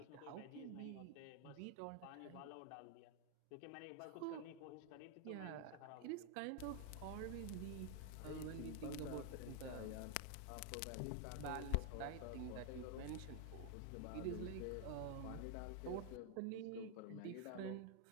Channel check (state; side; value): different; both; correlation 0.00